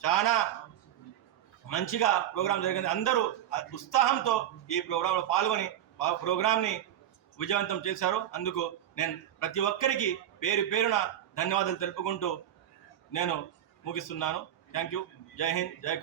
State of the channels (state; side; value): quieter; left; 11.2 dB